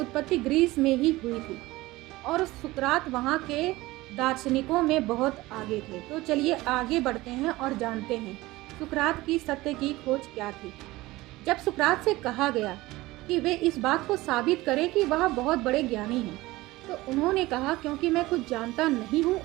ग्रीस में ही हुई थी और सुकरात वहाँ के दार्शनिकों में बहुत आगे थे। तो चलिए आगे बढ़ते हैं और जानते हैं सुकरात की सत्य की खोज क्या थी। जब सुकरात से कहा गया कि वे इस बात को साबित करें कि वह बहुत बड़े ज्ञानी हैं, तो उन्होंने कहा क्योंकि मैं कुछ जानता नहीं हूँ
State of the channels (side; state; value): left; quieter; 19.2 dB